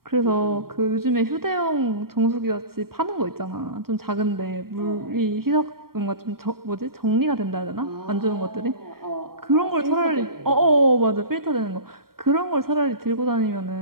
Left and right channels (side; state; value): left; late; 0.93 ms